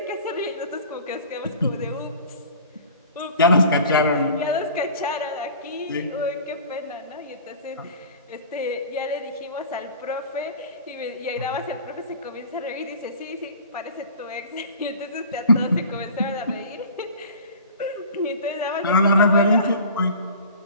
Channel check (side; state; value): both; inverted; correlation -0.41